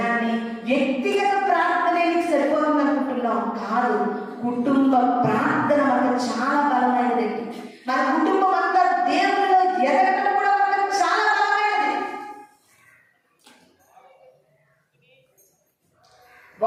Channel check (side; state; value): both; identical; correlation 1.00